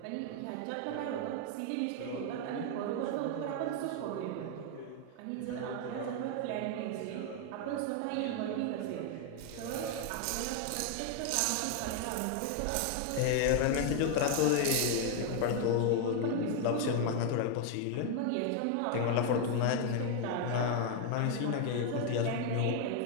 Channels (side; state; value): both; different; correlation 0.00